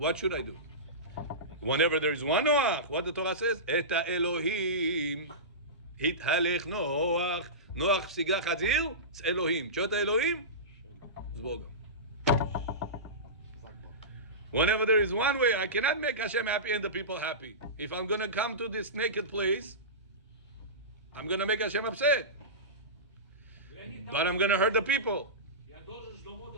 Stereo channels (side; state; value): both; normal; correlation -0.20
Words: should I do? Whenever there is one Noach, what the Torah says, את האלוהים התהלך נוח. נוח פסיגה חזיר, זה אלוהים. תשאול את האלוהים, זה בוגם. Whenever there is one way, I cannot make Hashem happy and the people happy. If I'm going to come to this naked place, I'm going to make Hashem upset. But I'm going to hurt the people. Я должен с